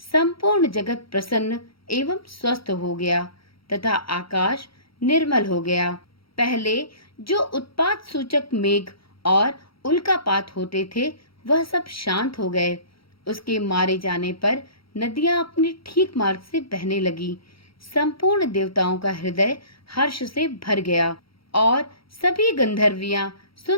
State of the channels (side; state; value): right; late; 0.75 ms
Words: जगत प्रसन्न एवं स्वस्थ हो गया तथा आकाश निर्मल हो गया। पहले जो उत्पात सूचक मेघ और उल्कापात होते थे वह सब शांत हो गए। उसके मारे जाने पर नदियां अपने ठीक मार्ग से बहने लगी। संपूर्ण देवताओं का हृदय हर्ष से भर गया और सभी गंधर्वियां